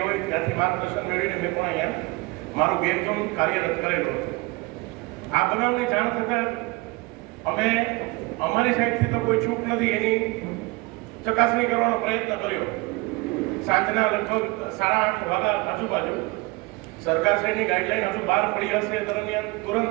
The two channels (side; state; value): left; quieter; 24.0 dB